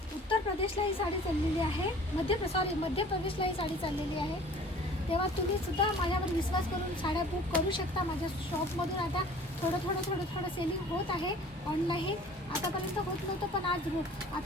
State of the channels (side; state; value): both; normal; correlation 0.48